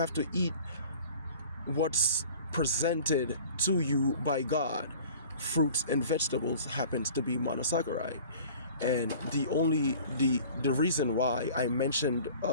to eat what's presented to you by God. Fruits and vegetables happens to be monosaccharide. And the reason why I mentioned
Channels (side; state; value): both; inverted; correlation -0.45